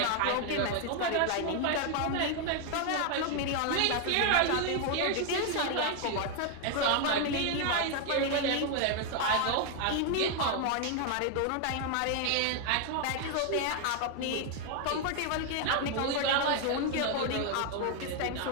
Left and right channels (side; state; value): both; different; correlation 0.00